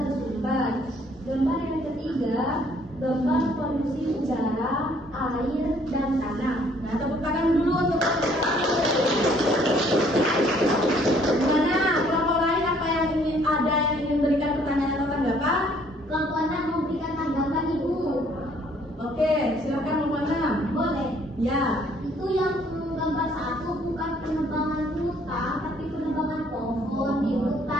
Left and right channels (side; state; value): both; normal; correlation 0.62